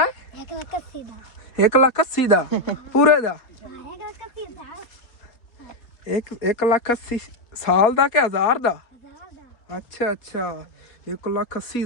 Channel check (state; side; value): late; right; 3.8 ms